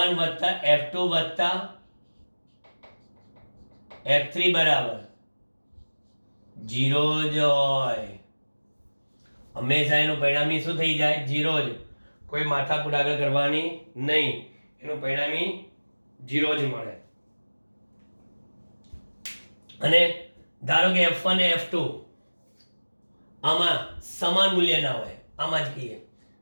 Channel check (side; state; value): both; inverted; correlation -1.00